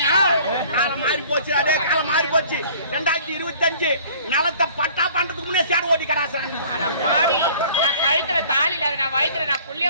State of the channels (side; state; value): both; inverted; correlation -0.51